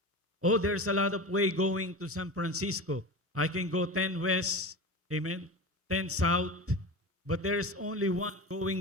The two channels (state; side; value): normal; both; correlation 0.28